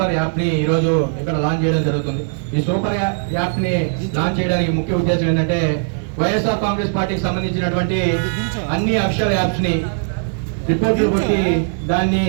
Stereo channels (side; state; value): left; silent; digital silence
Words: యాప్ ని ఈరోజు ఇక్కడ లాంచ్ చేయడం జరుగుతుంది. ఈ సూపర్ యాప్ ని లాంచ్ చేయడానికి ముఖ్య ఉద్దేశం ఏంటంటే వైఎస్ఆర్ కాంగ్రెస్ పార్టీకి సంబంధించినటువంటి అన్ని అఫీషియల్ యాప్స్ ని రిపోర్ట్లు కొట్టి దాన్ని